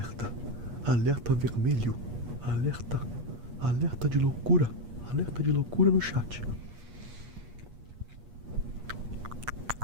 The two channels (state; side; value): late; left; 8.4 ms